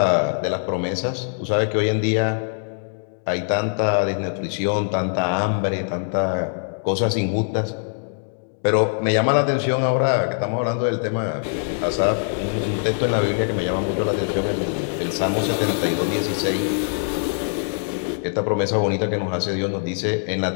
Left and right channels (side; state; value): right; silent; digital silence